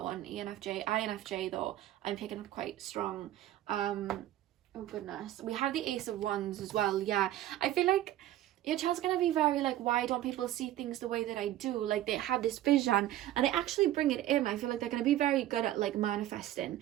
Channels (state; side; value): quieter; left; 13.7 dB